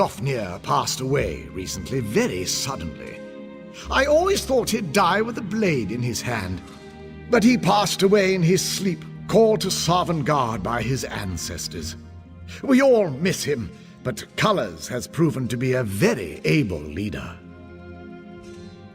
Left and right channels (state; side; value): identical; both; correlation 1.00